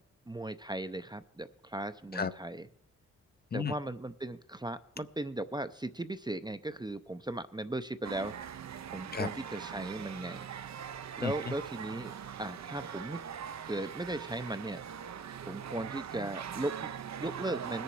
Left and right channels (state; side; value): normal; both; correlation 0.54